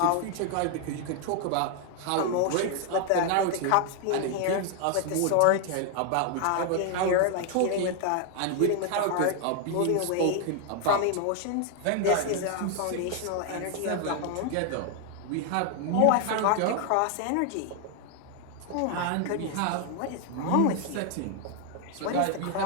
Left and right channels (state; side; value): different; both; correlation 0.00